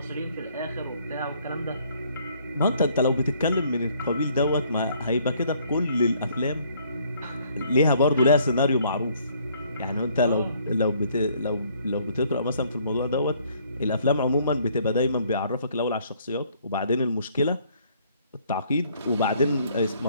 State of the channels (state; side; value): inverted; both; correlation -0.63